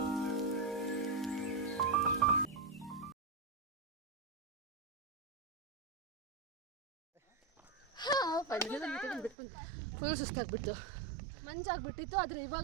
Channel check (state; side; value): drops out; left; at 9.3 s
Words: ಸುಸ್ತಾಗ್ಬಿಟ್ಟು ಮಂಜಾಗ್ಬಿಟ್ಟಿತ್ತು, ಆದರೆ